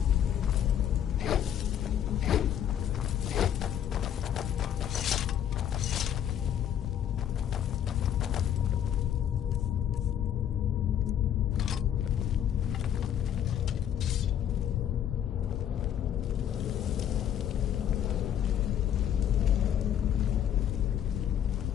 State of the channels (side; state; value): right; quieter; 9.9 dB